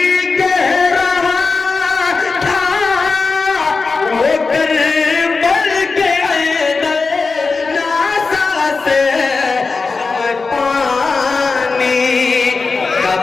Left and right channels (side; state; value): right; quieter; 4.3 dB